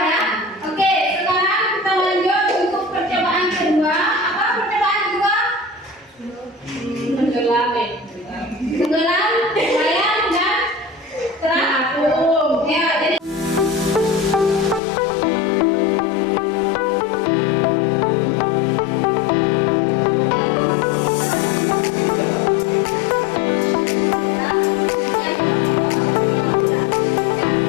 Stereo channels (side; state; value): right; drops out; at 14.8 s